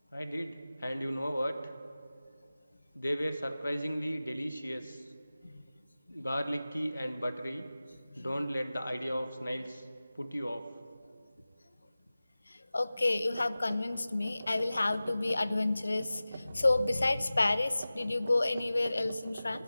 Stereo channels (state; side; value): inverted; both; correlation -0.97